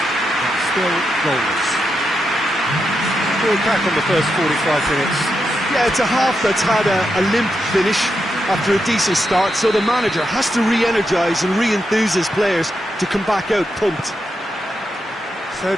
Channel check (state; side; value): normal; both; correlation 0.85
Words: still goalless. Going back on the first 45 minutes. Yeah, it's a half that's had a limp finish after a decent start, so the manager has to re-energise and re-enthuse his players to come back out pumped. So